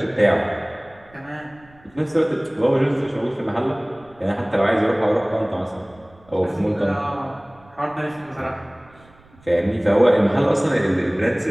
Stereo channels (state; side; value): noise; right; rumble, 28 dB below the sound